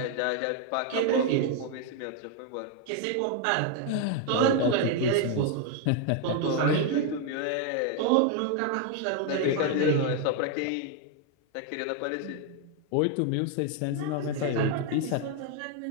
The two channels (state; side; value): different; both; correlation 0.01